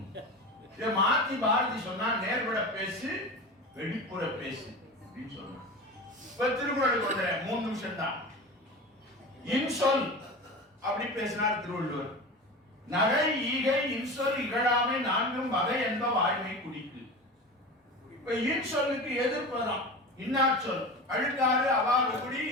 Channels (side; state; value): both; normal; correlation 0.30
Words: மாத்தி பாரதி சொன்னா, நேர்பட பேசு, வெளிப்புற பேசு அப்படின்னு சொன்னா. இப்ப திருக்குறளுக்கு வந்துறேன், 3 நிமிஷம் தான். இன்சொல் அப்படி பேசினார் திருவள்ளுவர். நகை ஈகை இன்சொல் இகழாமை 4 வகை என்ப வாய்மை குடிக்கு. இப்ப இன்சொல்லுக்கு எதிர்ப்பதான் இன்னாச்சொல். அழுக்காறு அவாறு குடி,